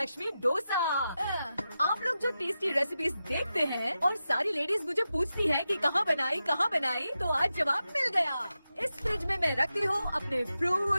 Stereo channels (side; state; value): both; inverted; correlation -0.90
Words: डोसा। आप लोग जो टेस्टी रेसिपीज देखते हैं और सारी लेडीज मुझे पूछती हैं कि कहाँ बनाई, तो आज जवाब मिल गया। इस फ्रिज में मैं रखती हूँ अपने